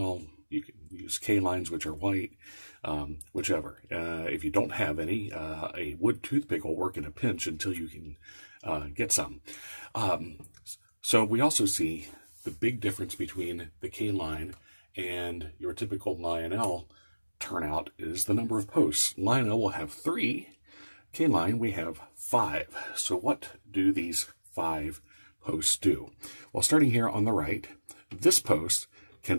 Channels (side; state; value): both; inverted; correlation -1.00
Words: You can use K-Lines, which are white, whichever. If you don't have any, a wood toothpick will work in a pinch until you can get some. So we also see the big difference between the K-Line and your typical Lionel turnout is the number of posts. Lionel will have 3. K-Line, we have 5. So what do these 5 posts do? Well, starting here on the right, this post